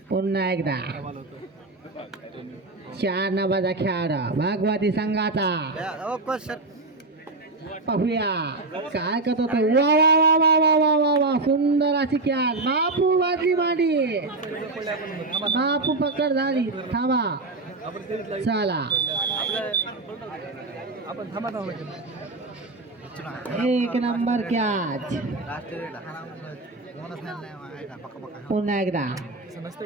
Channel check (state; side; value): quieter; left; 3.3 dB